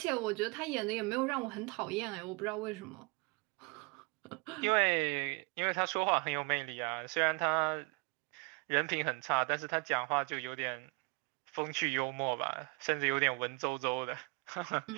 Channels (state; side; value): quieter; left; 29.0 dB